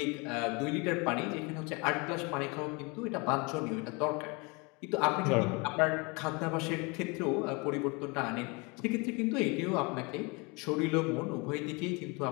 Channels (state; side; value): quieter; right; 29.0 dB